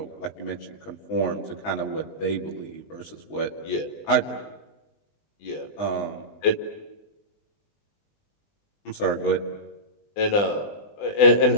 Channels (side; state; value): right; late; 20 ms